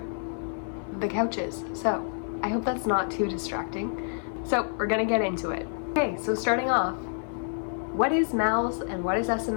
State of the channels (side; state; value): right; silent; 57 dB below the other